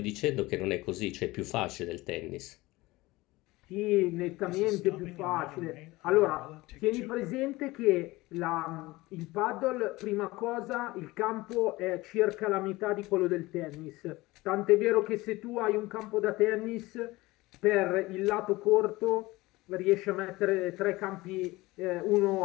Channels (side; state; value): right; quieter; 20.3 dB